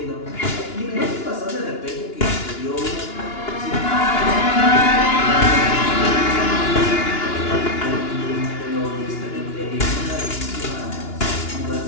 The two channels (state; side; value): late; right; 2.9 ms